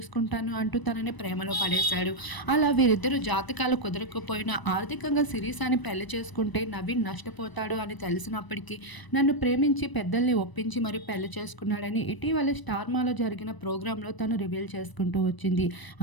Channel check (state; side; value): late; right; 1.0 ms